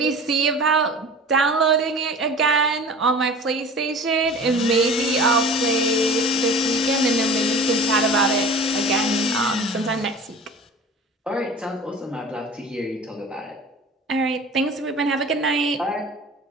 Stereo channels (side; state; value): both; normal; correlation 0.40